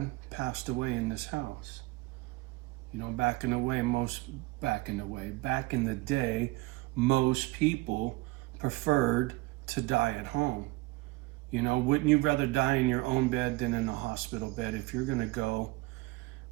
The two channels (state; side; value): quieter; left; 21.8 dB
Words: passed away in this house. You know, back in the day, most people preferred to die at home. You know, wouldn't you rather die in your own bed than in a hospital bed? If you're gonna go